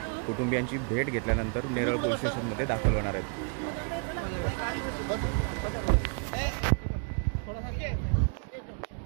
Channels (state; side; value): quieter; left; 39.6 dB